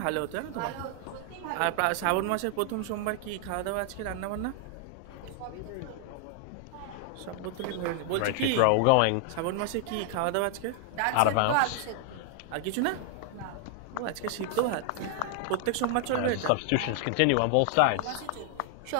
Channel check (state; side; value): different; both; correlation 0.00